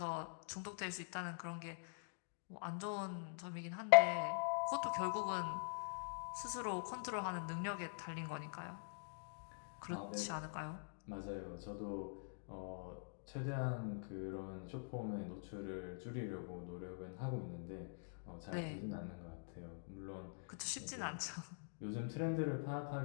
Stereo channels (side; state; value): right; silent; digital silence